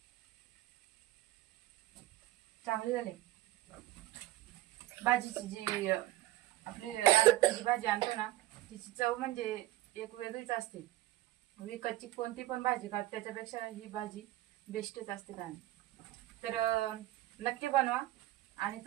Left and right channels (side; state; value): left; quieter; 16.1 dB